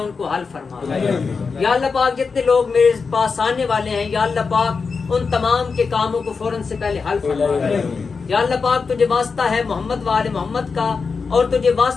کو حل فرما یا اللہ پاک. جتنے لوگ میرے پاس آنے والے ہیں یا اللہ پاک ان تمام کے کاموں کو فوراً سے پہلے حل فرما یا اللہ پاک. تجھے واسطہ ہے محمد و آل محمد کا اور تجھے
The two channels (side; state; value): right; quieter; 5.0 dB